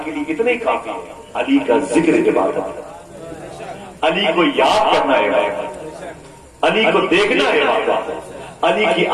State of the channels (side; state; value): both; identical; correlation 1.00